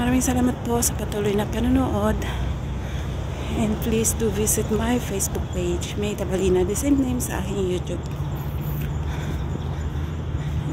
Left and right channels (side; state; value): both; identical; correlation 1.00